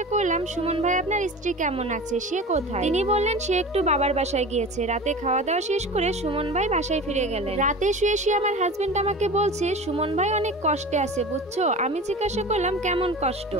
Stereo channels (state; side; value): normal; both; correlation 0.34